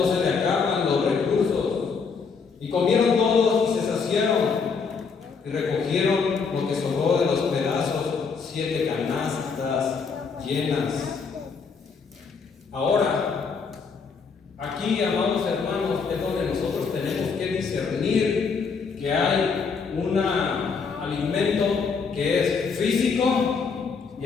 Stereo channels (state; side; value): quieter; right; 5.4 dB